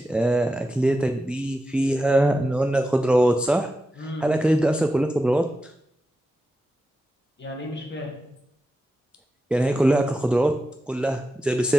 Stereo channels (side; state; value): both; normal; correlation 0.91